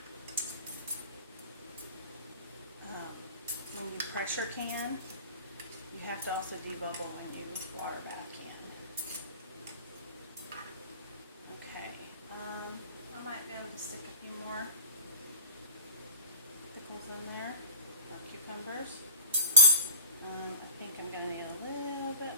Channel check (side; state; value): both; inverted; correlation -0.42